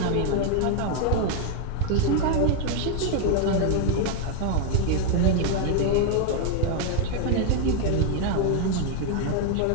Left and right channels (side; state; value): both; different; correlation 0.01